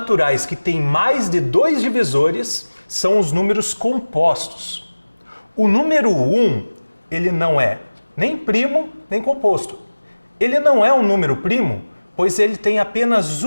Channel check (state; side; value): inverted; both; correlation -1.00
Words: que têm mais de 2 divisores são os números compostos. O número 1, ele não é nem primo nem composto. Ele não é um número primo, pois ele tem apenas